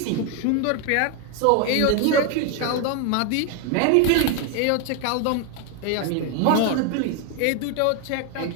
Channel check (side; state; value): both; different; correlation 0.01